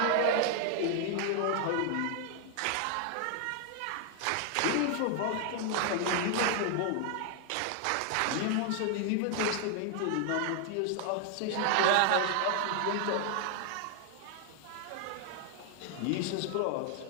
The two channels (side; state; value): both; different; correlation 0.00